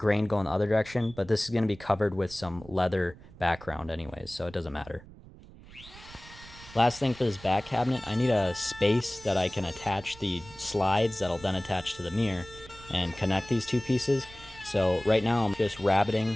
going the other direction, but this is gonna be covered with some leather background anyways, so it doesn't matter. Last thing for this back cabinet, I need a space that I can attach the slides that'll then attach to the mirror and connect these two pieces. So right now I'm just rabbiting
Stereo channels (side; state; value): right; noise; rumble, 20 dB below the sound